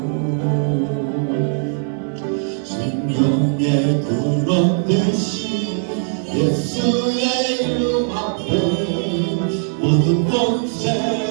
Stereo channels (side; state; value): left; silent; 66 dB below the other